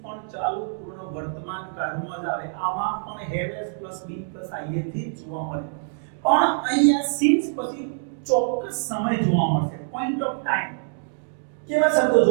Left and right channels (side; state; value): left; silent; digital silence